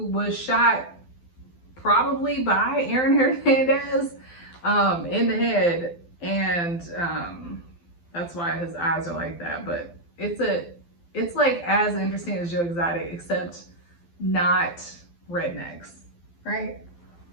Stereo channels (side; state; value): right; late; 12 ms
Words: was shot probably by Aaron Hernandez in the head, and that's why his eyes are like that. But it's like as interesting as Joe Exotic, except not rednecks, right?